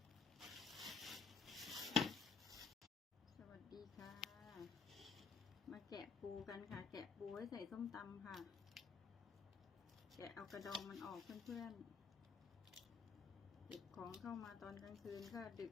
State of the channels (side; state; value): right; quieter; 5.6 dB